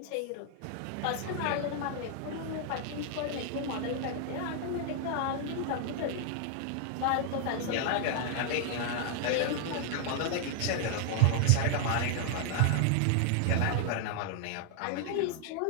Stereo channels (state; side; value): different; both; correlation 0.00